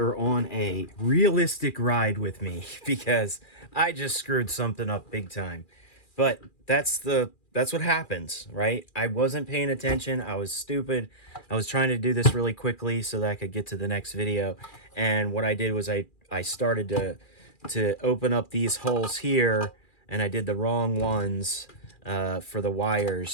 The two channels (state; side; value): late; right; 2.4 ms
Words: on a realistic ride with me because I just screwed something up big time. But that's what happens, right? I wasn't paying attention. I was stupid. I was trying to do this really quickly so that I could get to the next video. And what I did was I started to open up these holes here, and I did the wrong ones for the